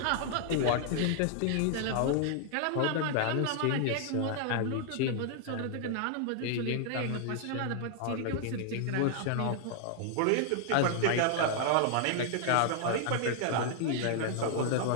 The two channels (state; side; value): different; both; correlation 0.00